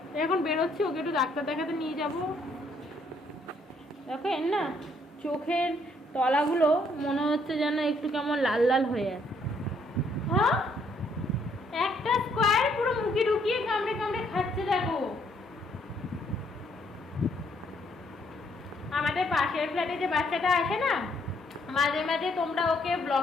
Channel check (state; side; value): normal; both; correlation 0.69